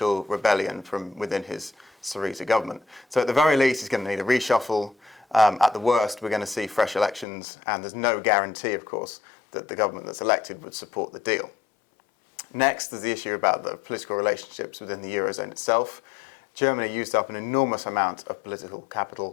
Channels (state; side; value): drops out; right; at 7.2 s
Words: rebellion from within his Syriza government. So at the very least, he's going to need a reshuffle. At the worst, we're going to see fresh elections, and there's no guarantee, of course, that the government that's elected would support the deal. Next, there's the issue about the political relationships within the eurozone itself. Germany used up an enormous amount of political